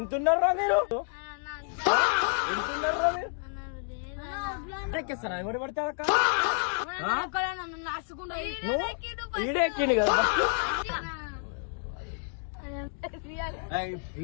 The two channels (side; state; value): right; silent; 55 dB below the other